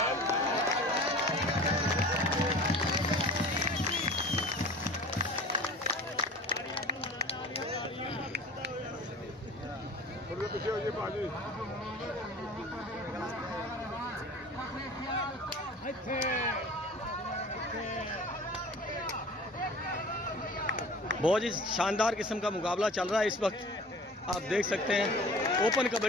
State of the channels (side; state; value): both; normal; correlation 0.42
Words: बहुत ही शानदार किस्म का मुकाबला चल रहा है इस वक्त, आप देख सकते हैं। ओपन